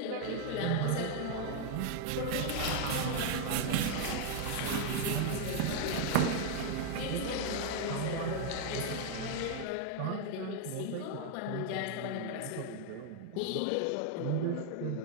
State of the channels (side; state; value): both; different; correlation 0.00